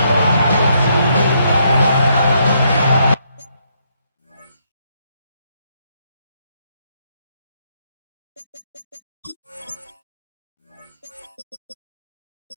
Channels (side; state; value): both; inverted; correlation -0.74